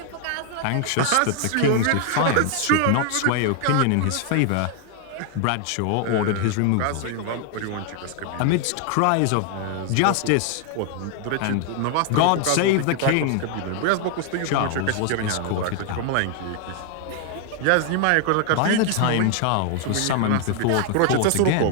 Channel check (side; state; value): both; different; correlation 0.00